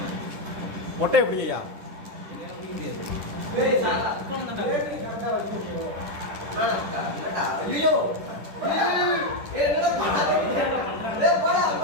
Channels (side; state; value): left; late; 10 ms